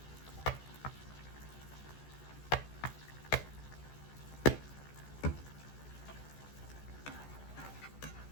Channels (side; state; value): right; late; 14 ms